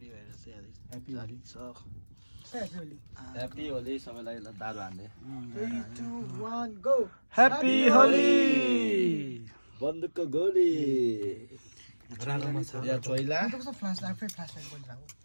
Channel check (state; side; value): inverted; both; correlation -1.00